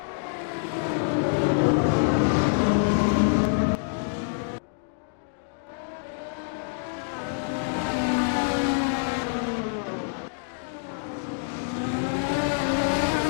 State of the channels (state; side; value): silent; right; digital silence